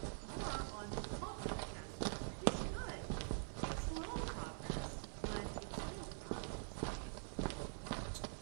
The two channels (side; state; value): left; silent; digital silence